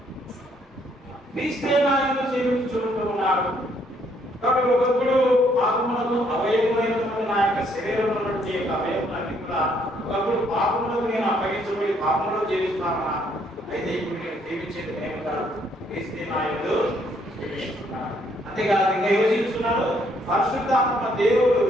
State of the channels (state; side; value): normal; both; correlation 0.68